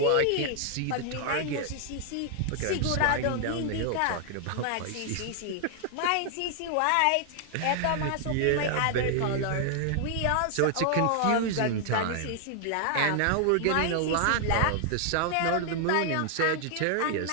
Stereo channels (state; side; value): different; both; correlation 0.00